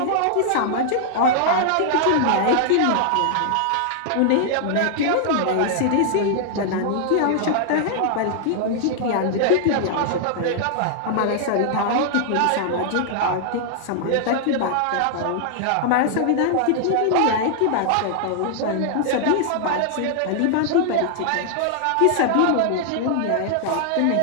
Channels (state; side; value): different; both; correlation -0.01